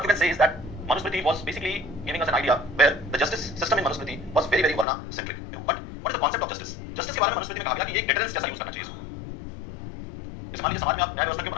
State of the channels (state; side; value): drops out; right; at 4.9 s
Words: you can say is that Manusmriti was basically giving us an idea where the justice system in Manusmriti was very, very varna centric. But what is the concept of justice? Justice के बारे में मनुस्मृति में कहा गया कि एक deterrence जैसा use करना चाहिए इसको. जैसे मान लीजिए समाज में आप न्याय व्यवस्था क्यों